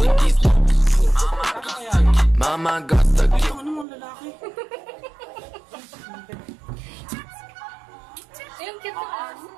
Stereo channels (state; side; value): drops out; left; at 3.9 s